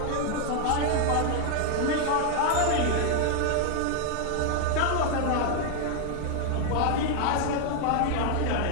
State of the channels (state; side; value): different; both; correlation 0.00